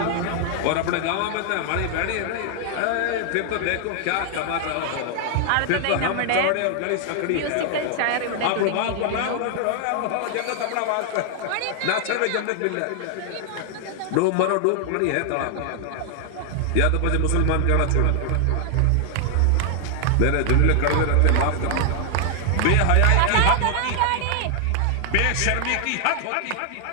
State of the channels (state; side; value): different; both; correlation 0.00